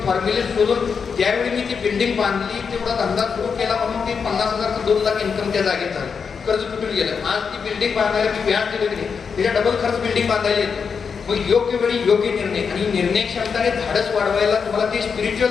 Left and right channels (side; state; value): right; quieter; 6.0 dB